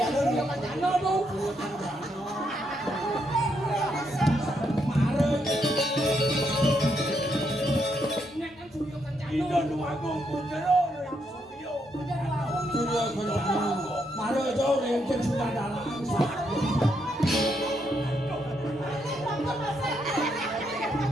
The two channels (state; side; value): normal; both; correlation 0.77